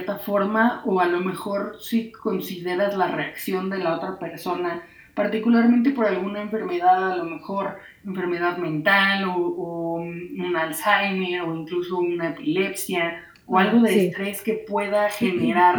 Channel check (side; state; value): both; identical; correlation 1.00